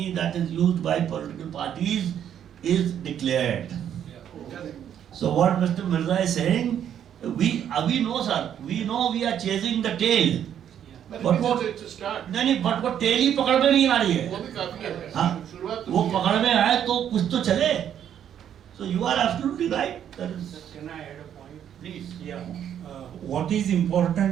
that is used by political parties is declared. So what Mr. Mirza is saying, we know, sir. We know we are chasing the tail. But what tail ही पकड़ में नहीं आ रही है. हाँ, वो पकड़ में आए तो कुछ तो चले. So you are absolutely right. Can I add a point? Please. Yeah. What is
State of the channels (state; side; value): quieter; left; 9.6 dB